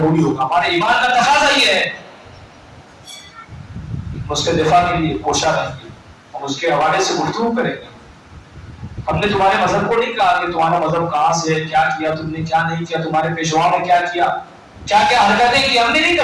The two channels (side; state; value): both; identical; correlation 1.00